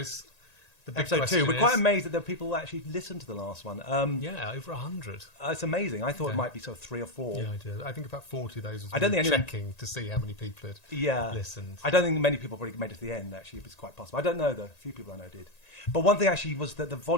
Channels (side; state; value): right; late; 1.9 ms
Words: Episode 2. We're quite amazed that there are people who actually listened to the last one. Over 100. It's amazing. I thought it might be sort of 3 or 4. Yeah, I did. I think about 40 of those was checking to see how many people had listened. I don't think many people probably made it to the end, actually. It was quite possible. I don't know, though. A few people I know did. But one thing, actually, was that the